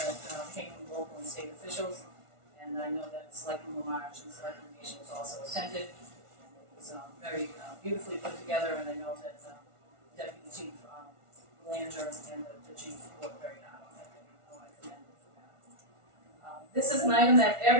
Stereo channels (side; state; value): left; late; 1.4 ms